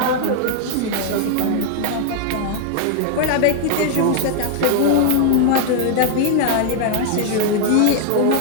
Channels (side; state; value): both; different; correlation 0.00